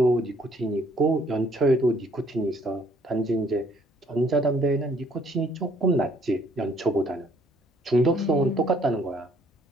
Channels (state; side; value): normal; both; correlation 0.63